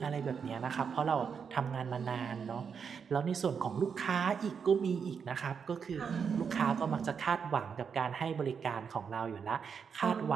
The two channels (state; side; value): quieter; left; 6.5 dB